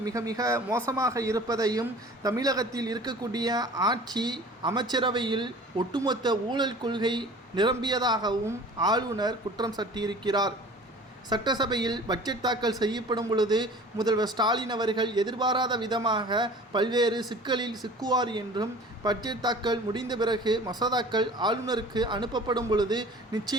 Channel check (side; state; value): both; normal; correlation 0.44